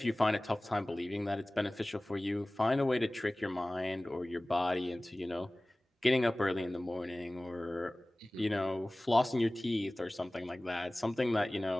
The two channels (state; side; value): normal; both; correlation 0.98